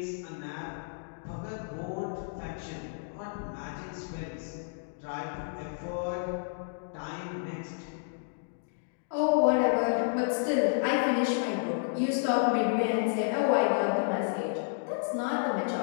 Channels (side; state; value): right; silent; digital silence